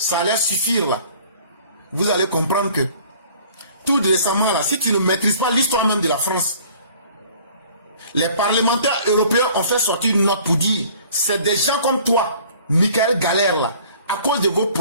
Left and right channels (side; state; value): both; inverted; correlation -0.52